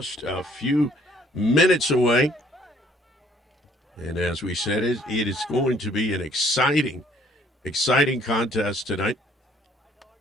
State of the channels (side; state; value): both; normal; correlation 0.61